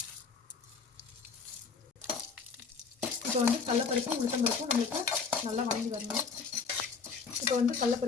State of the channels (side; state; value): right; quieter; 5.3 dB